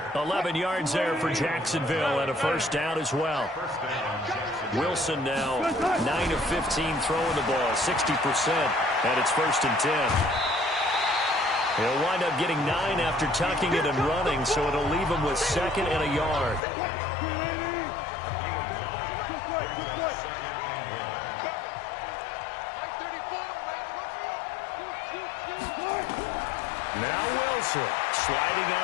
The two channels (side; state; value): right; drops out; at 16.6 s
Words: 11 yards there for Jacksonville and a first down as well. Wilson now 9 of 15 throwing the ball, 60%, and it's 1st and 10. He'll wind up getting 9 after tucking it and running, so it'll leave him with 2nd and a yard. Now Wilson sliding